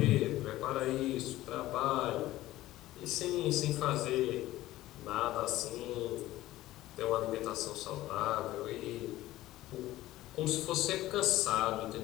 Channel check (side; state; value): right; quieter; 15.9 dB